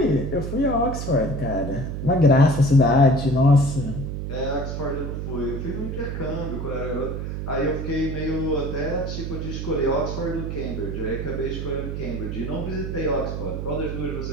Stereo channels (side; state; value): right; noise; hum, 4 dB below the sound